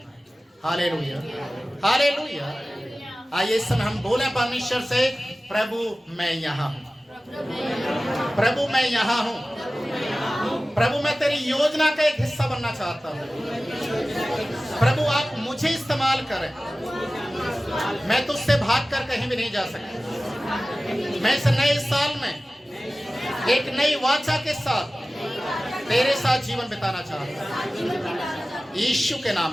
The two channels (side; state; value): both; normal; correlation 0.97